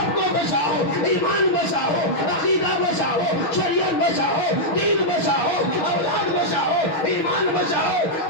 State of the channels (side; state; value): right; late; 6.3 ms